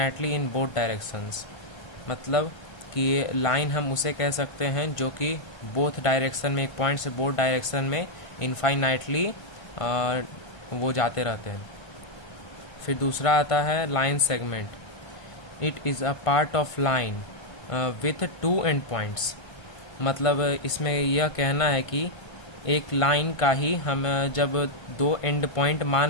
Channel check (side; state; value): right; late; 1.5 ms